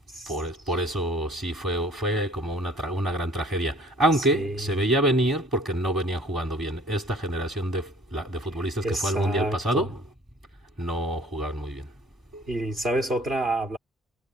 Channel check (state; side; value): normal; both; correlation 0.52